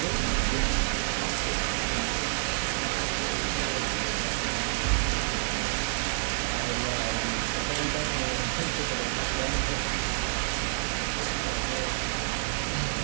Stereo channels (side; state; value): left; silent; 59 dB below the other